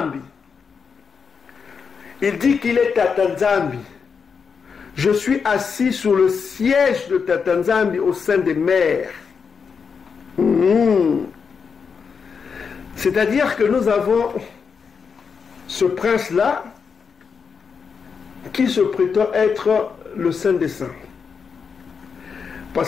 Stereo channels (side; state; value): right; quieter; 5.9 dB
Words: Il dit qu'il est Tatanzambi. Je suis assis sur le siège de Tatanzambi au sein des mers. C'est-à-dire que nous avons ce prince-là qui se prétend être le Saint des Saints.